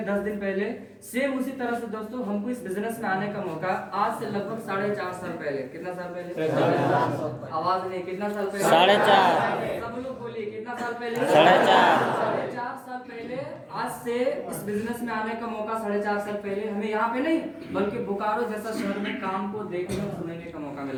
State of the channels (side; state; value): both; identical; correlation 1.00